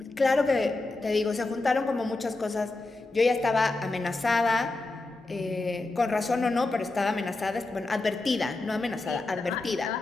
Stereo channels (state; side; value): quieter; right; 3.2 dB